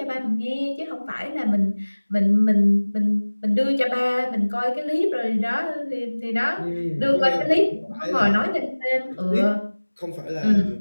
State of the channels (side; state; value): both; inverted; correlation -1.00